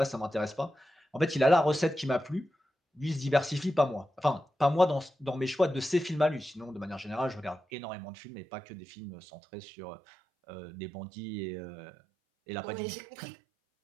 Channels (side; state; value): left; drops out; at 7.6 s